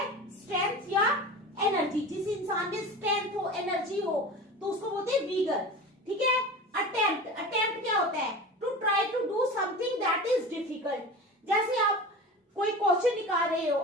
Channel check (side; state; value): both; normal; correlation 0.33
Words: स्ट्रेंथ या एनर्जी। जिस इंसान में स्ट्रेंथ हो, एनर्जी हो, तो उसको बोलते हैं विगर। ठीक है। अटेम्प्ट। अटेम्प्ट क्या होता है? To try to do something that is difficult. जैसे आप कोई क्वेश्चन निकाल रहे हो,